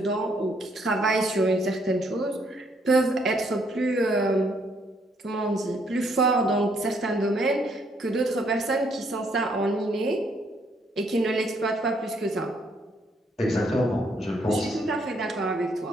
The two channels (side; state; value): both; normal; correlation 0.70